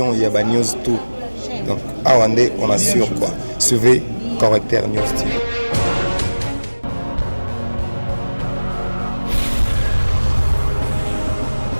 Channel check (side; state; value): both; inverted; correlation -1.00